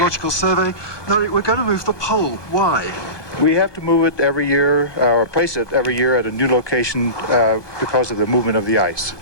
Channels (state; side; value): late; right; 1.2 ms